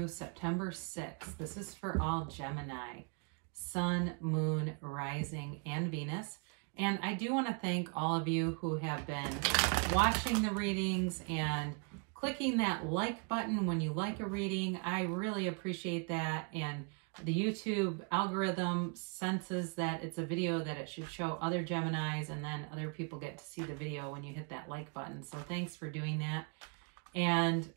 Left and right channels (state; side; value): quieter; left; 37.4 dB